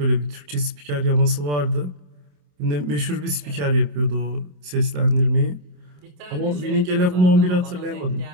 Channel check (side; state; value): left; late; 27 ms